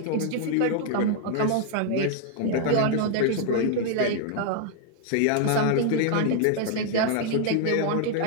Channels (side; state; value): both; different; correlation 0.00